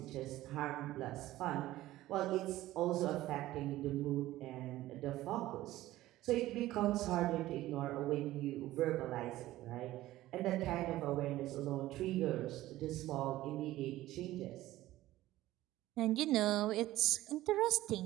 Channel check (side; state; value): left; quieter; 15.8 dB